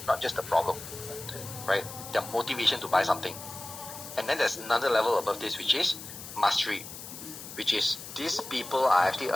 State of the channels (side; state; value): left; noise; hiss, 12 dB below the sound